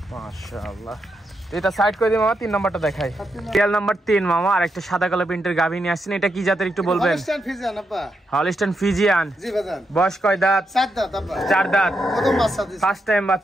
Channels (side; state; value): both; normal; correlation 0.83